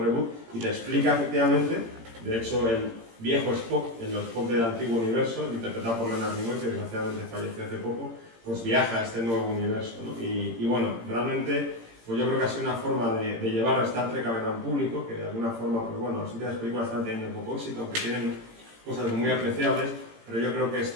reboot, y te explica efectivamente, de hecho, el viejo Spock, el Spock del antiguo universo, interpretado por Leonard Nimoy, que desgraciadamente falleció hace poco, pues viaja a este nuevo universo, ¿no? Y bueno, realmente, pues yo creo que ha sido una forma de llevar a Star Trek al gran público, que de alguna forma, pues bueno, las últimas películas están teniendo poco éxito, aunque tienen cosas muy apreciables, pero yo creo que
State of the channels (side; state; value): left; late; 18 ms